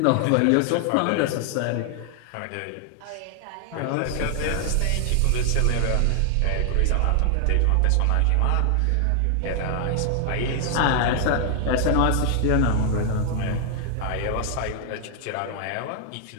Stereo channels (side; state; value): both; different; correlation 0.00